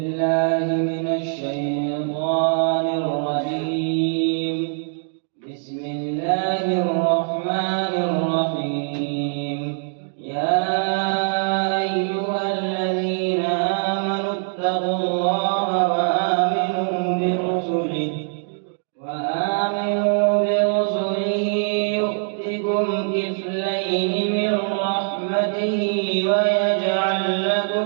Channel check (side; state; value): left; silent; digital silence